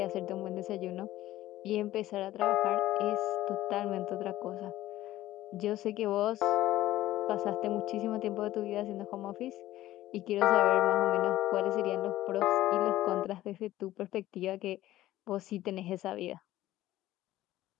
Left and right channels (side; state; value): right; quieter; 14.9 dB